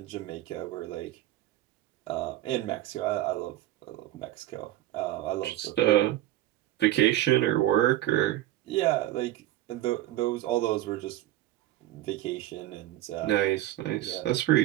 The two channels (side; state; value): left; quieter; 14.5 dB